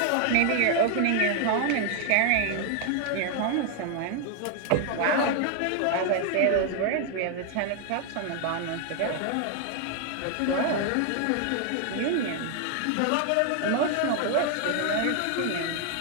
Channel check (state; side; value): different; both; correlation 0.00